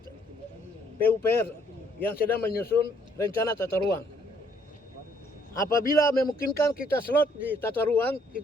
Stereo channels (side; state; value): both; normal; correlation 0.66